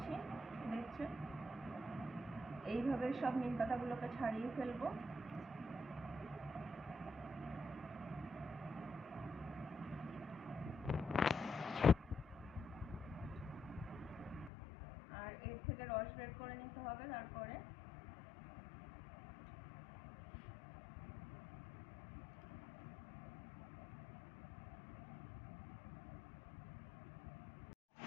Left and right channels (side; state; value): right; drops out; at 14.5 s